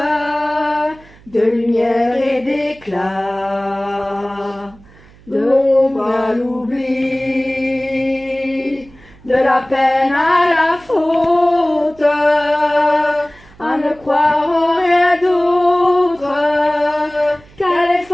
de lumière et d'éclat, de l'ombre à l'oubli, de la peine à la faute, à ne croire en rien d'autre qu'à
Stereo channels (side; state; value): right; noise; hum, 25 dB below the sound